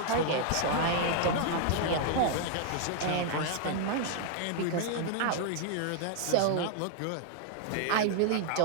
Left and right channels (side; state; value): both; different; correlation 0.00